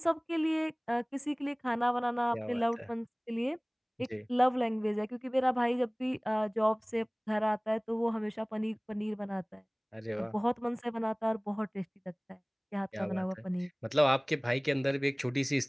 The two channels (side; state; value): both; identical; correlation 1.00